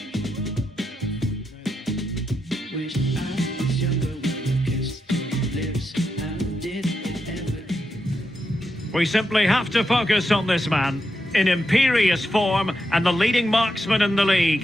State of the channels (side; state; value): both; normal; correlation 0.84